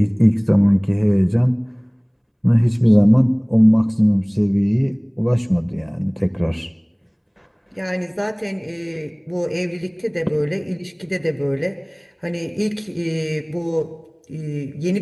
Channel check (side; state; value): both; identical; correlation 1.00